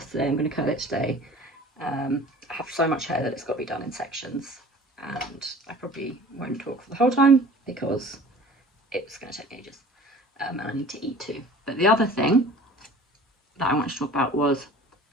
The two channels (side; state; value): both; normal; correlation 0.45